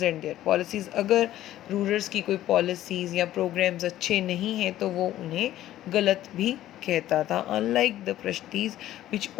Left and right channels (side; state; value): right; quieter; 13.5 dB